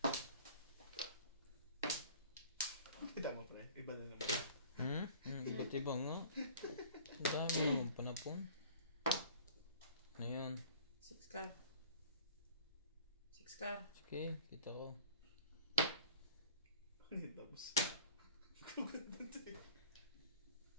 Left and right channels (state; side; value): inverted; both; correlation -0.46